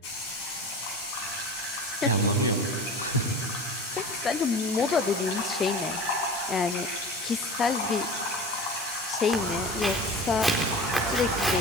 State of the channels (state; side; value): normal; both; correlation 0.34